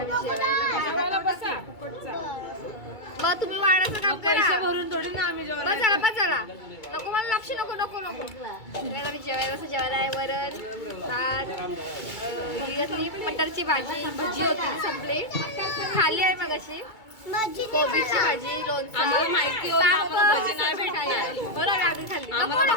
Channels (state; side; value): late; right; 2.3 ms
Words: मी जेवायला बसा फुकटचा. मग तुम्ही वाढायचं काम पैसे करा. भरून थोडी ना आम्ही जेवण. बस चला नको मला लक्ष नको नको नको. मी जेवायला कसं जेवायला आहे वरण भात ही कसली मटरची भाजी भजी होती ती संपली. खाली आहे मग अशी कोबीची भाजी लोणचं. आम्हाला माहिती होतं पापड, आपण भजी नाही भेटणार. बरं आम्ही खाल्ली. नको आम्हाला नको